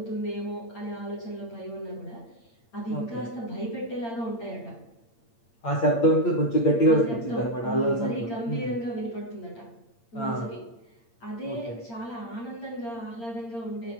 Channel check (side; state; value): right; late; 8.7 ms